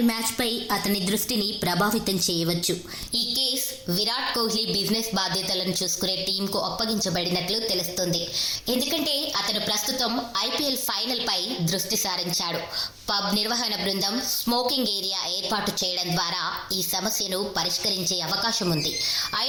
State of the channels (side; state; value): both; identical; correlation 1.00